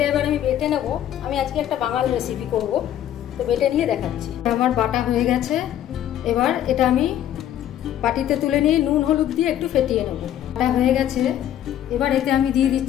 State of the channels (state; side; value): quieter; right; 11.4 dB